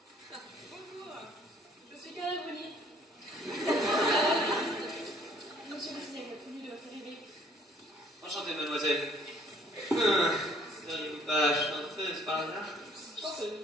Bonjour, je suis Carla Bruni. Monsieur le cinéma, connu de votre arrivée. Enchanté, mademoiselle. Seriez-vous pas chanteuse par hasard?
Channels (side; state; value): both; normal; correlation 0.60